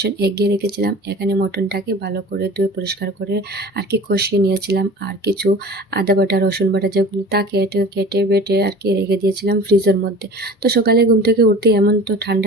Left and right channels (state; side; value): normal; both; correlation 0.41